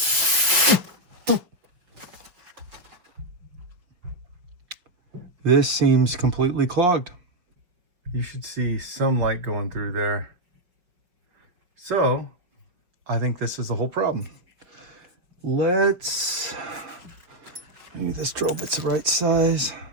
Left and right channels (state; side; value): late; left; 5.6 ms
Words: This seems completely clogged. You should see some light going through there. So I think this is the whole problem. Let's, maybe this drill bit's the right size.